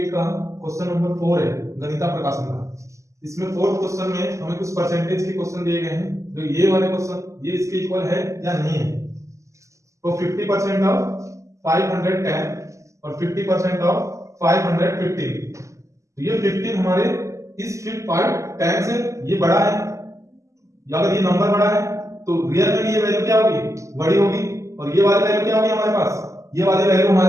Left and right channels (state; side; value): late; left; 0.15 ms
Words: का क्वेश्चन नंबर 4 है गणिता प्रकाशन का। इसमें फोर्थ क्वेश्चन में हमें कुछ परसेंटेज के क्वेश्चन दिए गए हैं। जो ये वाले क्वेश्चन ये इसके इक्वल है या नहीं है। तो 50% ऑफ 510 और 50% ऑफ 515। तो ये 15 हमारे इस 510 से ये बड़ा है, या अगर ये नंबर बड़ा है तो रियल में भी ये वैल्यू क्या होगी, बड़ी होगी। और ये वाली वैल्यू क्या होगी हमारे पास, ये वाली वैल्यू